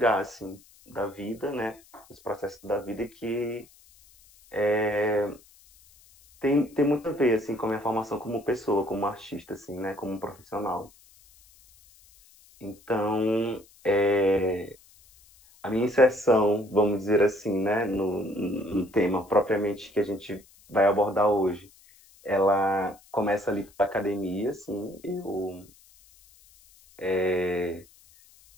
assim, da vida, né, os processos da vida que tem muito a ver assim, com a minha formação como pessoa, como artista, assim, né, como profissional. Então, a minha inserção, vamos dizer assim, né, no tema propriamente que a gente vai abordar hoje, ela começa ali pela academia, assim,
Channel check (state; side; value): noise; left; hiss, 27 dB below the sound